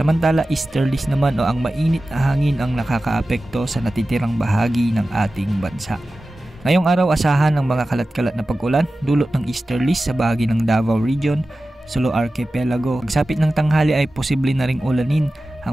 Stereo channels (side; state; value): both; normal; correlation 0.95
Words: easterlies naman o ang mainit na hangin ang nakakaapekto sa natitirang bahagi ng ating bansa. Ngayong araw, asahan ng mga kalat-kalat na pag-ulan dulot ng easterlies sa bahagi ng Davao Region, Sulu Archipelago. Pagsapit ng tanghali ay posible na ring ulanin